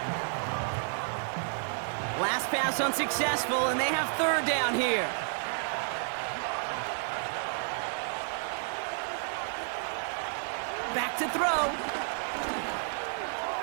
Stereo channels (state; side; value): silent; left; 57 dB below the other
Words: Last pass unsuccessful, and they have 3rd down here. Back to throw.